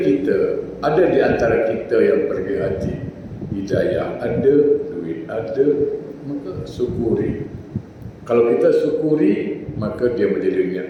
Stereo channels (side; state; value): both; identical; correlation 1.00